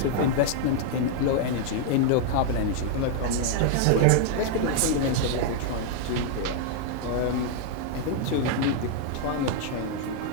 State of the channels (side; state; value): both; different; correlation -0.01